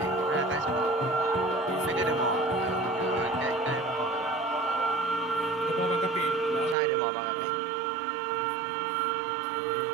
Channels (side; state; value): left; drops out; at 6.8 s